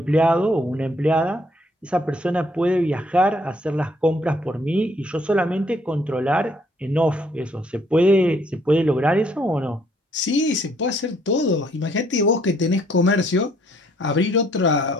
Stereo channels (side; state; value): both; normal; correlation 0.66